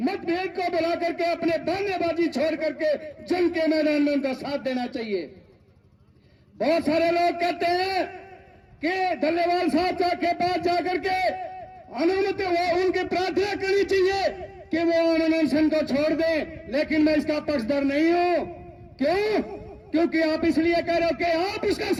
मतभेद को बुला करके अपने बहानेबाजी छोड़ करके जंग के मैदान में उनका साथ देना चाहिए। बहुत सारे लोग कहते हैं कि डल्लेवाल साहब के पास जाकर के अनुमति उनकी प्रार्थना करनी चाहिए कि वो अनशन को छोड़ दें, लेकिन मैं इसका पक्षधर नहीं हूं। क्यों? क्योंकि आप इसलिए कह रहे हो कि आप उसका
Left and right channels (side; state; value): both; identical; correlation 1.00